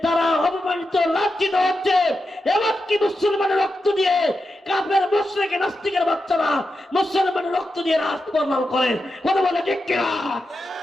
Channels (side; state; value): both; normal; correlation 0.88